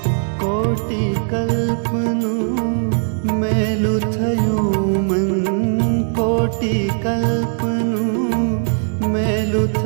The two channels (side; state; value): left; silent; 67 dB below the other